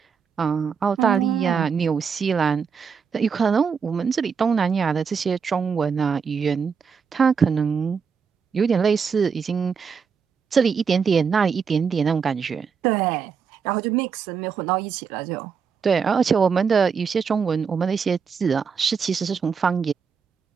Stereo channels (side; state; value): left; quieter; 6.1 dB